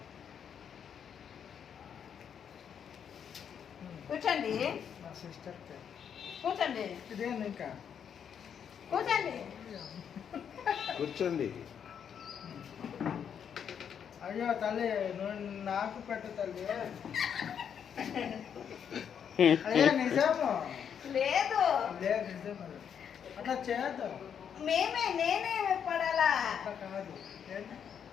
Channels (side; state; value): right; quieter; 8.0 dB